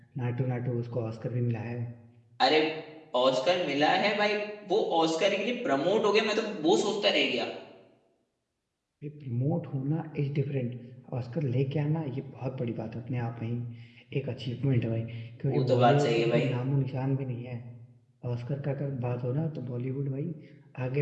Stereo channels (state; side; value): identical; both; correlation 1.00